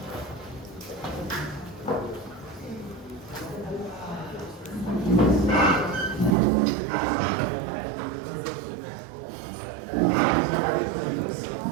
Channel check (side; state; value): left; drops out; at 6.4 s